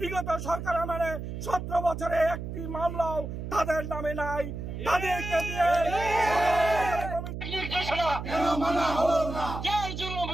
সরকার আমলে 17 বছরে একটি মামলাও তাদের নামে নাই। তাদেরকে দিয়ে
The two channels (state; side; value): noise; right; hum, 7 dB below the sound